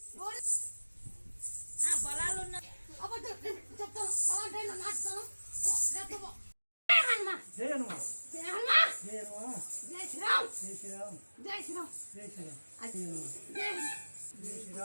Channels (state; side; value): inverted; both; correlation -1.00